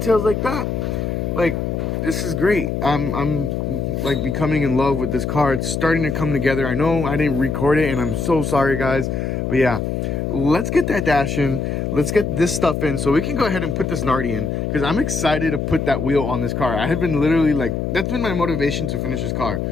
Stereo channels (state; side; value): noise; left; hum, 1 dB below the sound